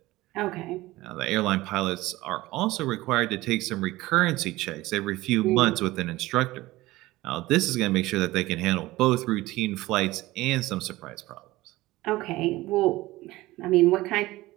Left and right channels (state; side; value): quieter; left; 18.4 dB